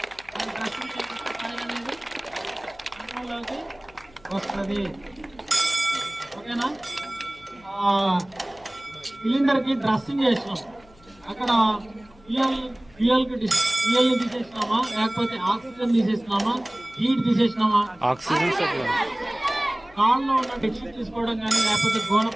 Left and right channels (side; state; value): left; noise; hum, 27 dB below the sound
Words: దాన్ని డ్రెస్సింగ్ చేస్తే ఫైర్ అనేది కంట్రోల్లోకి వస్తుంది. ఓకేనా? సిలిండర్కి డ్రెస్సింగ్ చేసినాం, అక్కడ ఫ్యూయల్ని తీసేసినామా లేకపోతే ఆక్సిజన్ తీసేసినామా, హీట్ తీసేసినామా, ఆక్సిజన్ కాళ్ళలో ఉన్న బెడ్షీట్ తీసుకోవడం కానీ లేకపోతే